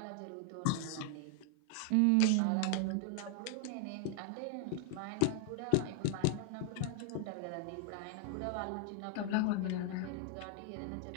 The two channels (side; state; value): both; different; correlation 0.00